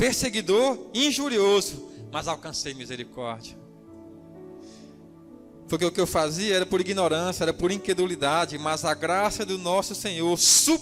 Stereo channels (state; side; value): identical; both; correlation 1.00